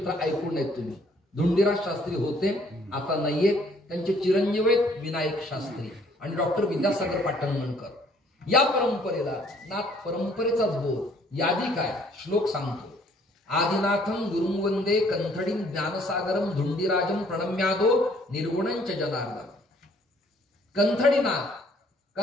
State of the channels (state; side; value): normal; both; correlation 0.61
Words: ऐकून आहेत तुम्ही. धुंडीराज शास्त्री होते, आता नाहीये. त्यांचे चिरंजीव आहेत विनायक शास्त्री आणि डॉक्टर विद्यासागर पाटणगणकर. या परंपरेला नाथ परंपरेचाच बोध. यादी काय, श्लोक सांगतो. आदिनाथम गुरुं वंदे कंथडीं ज्ञानसागरम धुंडीराजम प्रणम्यादो निर्गुणंच जनार्दन. कंथडीनाथ,